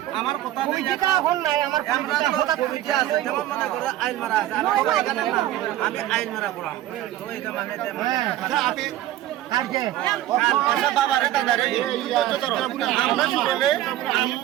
আমার কথা নাই আইন মারা আছে আমি আইন মারা করাম তো এটা মানে কালকে বাবা রে দাদা রে আমরা শুনলে আমি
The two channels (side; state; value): left; quieter; 13.8 dB